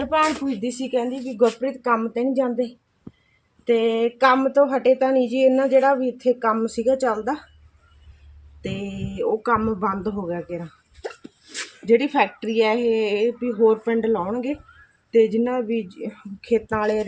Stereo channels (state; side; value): identical; both; correlation 1.00